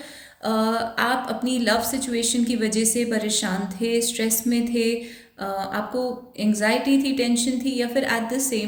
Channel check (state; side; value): identical; both; correlation 1.00